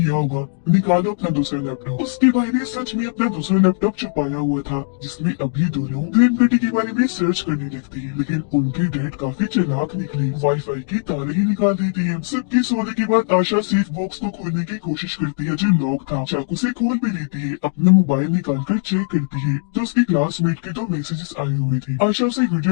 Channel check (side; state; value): right; silent; digital silence